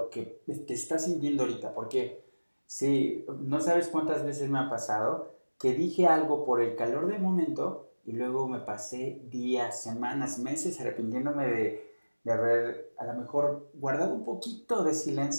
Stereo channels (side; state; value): both; inverted; correlation -1.00